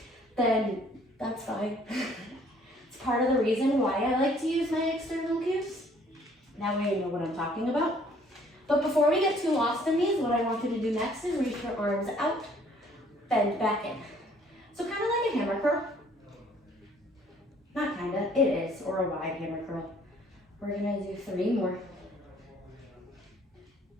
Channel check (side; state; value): both; normal; correlation 0.60